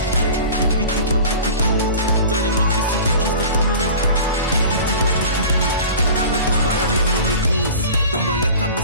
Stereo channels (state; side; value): inverted; both; correlation -0.39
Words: بی دی با بی دی بو داریم میکسی تو کیف پول. بی دی با بی دی بو همه دنبالم یه مینی بوس دنبالت هم